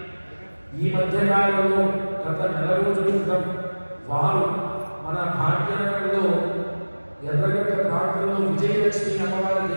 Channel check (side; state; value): both; inverted; correlation -1.00